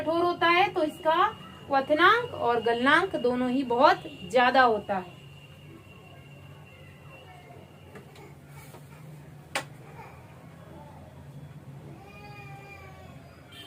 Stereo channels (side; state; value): both; identical; correlation 1.00